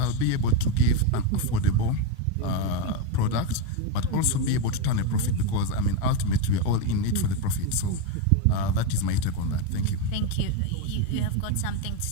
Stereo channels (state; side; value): different; both; correlation 0.04